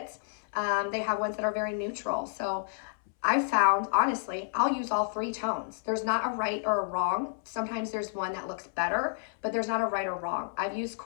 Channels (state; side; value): silent; right; 58 dB below the other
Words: They have ones that are very neutral. So I found, honestly, I'll use all three tones. There's not a right or a wrong. Sometimes there's one that looks better, but there's not a right or wrong. I've used